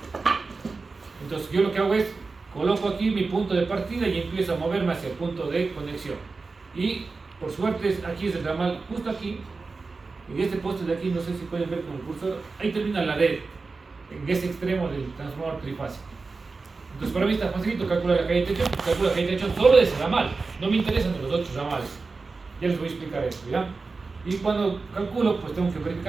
Entonces yo lo que hago es coloco aquí mi punto de partida y empiezo a moverme hacia el punto de conexión. Y por suerte aquí es el ramal justo aquí. En este poste de aquí, no sé si pueden ver con el cursor, ahí termina la red, en ese extremo del transformador trifásico. Entonces para mí está facilito calcular la caída de tensión, calculo la caída de tensión solo de ese ramal, no me interesan los otros ramales. Ya les voy a explicar esto, ¿ya? Y cuando calculo, pues tengo que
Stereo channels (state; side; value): quieter; left; 4.1 dB